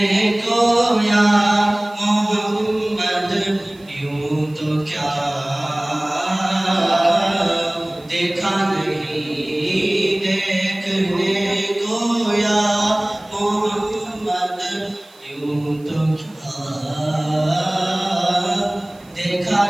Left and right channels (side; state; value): right; noise; hiss, 29 dB below the sound